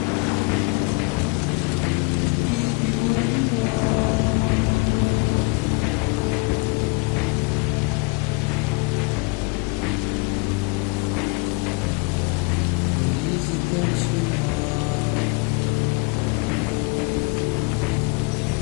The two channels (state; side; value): quieter; right; 28.6 dB